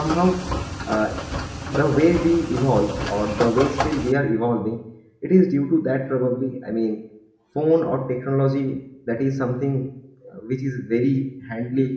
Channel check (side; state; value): both; identical; correlation 1.00